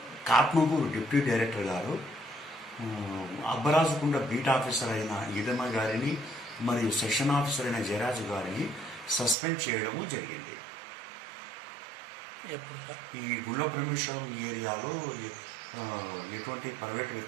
కాట్మగూరు డిప్యూటీ డైరెక్టర్ గారు అబ్బరాజుకుంట బీట్ ఆఫీసర్ అయిన ఈదమ్మ గారిని మరియు సెక్షన్ ఆఫీసర్ అయిన జయరాజు గారిని సస్పెండ్ చేయడము జరిగింది. ఈ గుణపరమేశ్వరం ఏరియాలో ఎటువంటి ప్రైవేట్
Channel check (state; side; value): drops out; left; at 9.3 s